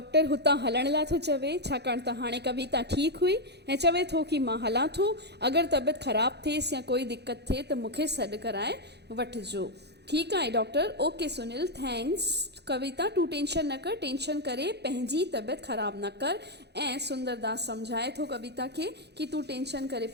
हुतां हलण लाइ थो चवे, छाकाणि त हाणे कविता ठीकु हुई ऐं चवे थो कि मां हलां थो। अगरि तबियत ख़राबु थिएसि या कोई दिक़त थिए त मूंखे सॾु कराए वठिजो। ठीकु आहे डॉक्टर, ओके सुनील, थैंक्स। कविता तूं टेंशन न कर, टेंशन करे पंहिंजी तबियत ख़राबु न कर। ऐं सुंदरदास सम्झाए थो कविता खे कि तूं टेंशन करे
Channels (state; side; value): late; left; 0.49 ms